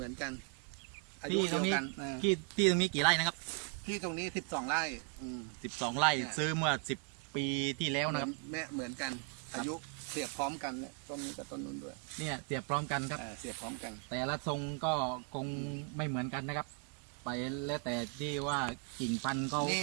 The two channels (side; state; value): left; quieter; 37.0 dB